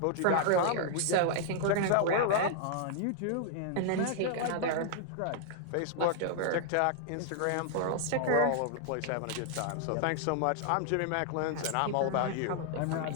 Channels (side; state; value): both; different; correlation -0.01